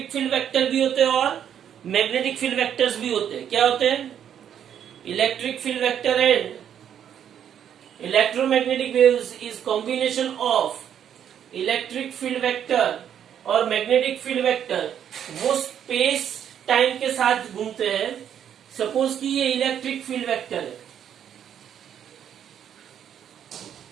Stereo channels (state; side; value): quieter; left; 9.3 dB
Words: फील्ड वेक्टर भी होते हैं और मैग्नेटिक फील्ड वेक्टर्स भी होते हैं। क्या होते हैं? Electric field vector and electromagnetic waves is combination of electric field vector और मैग्नेटिक फील्ड वेक्टर। वो स्पेस टाइम के साथ घूमते हैं। सपोज कि ये इलेक्ट्रिक फील्ड वेक्टर है,